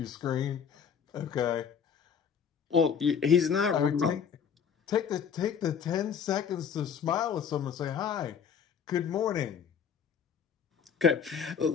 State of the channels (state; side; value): quieter; right; 7.3 dB